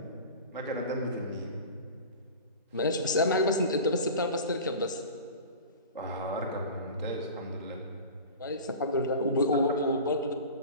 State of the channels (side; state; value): both; inverted; correlation -0.35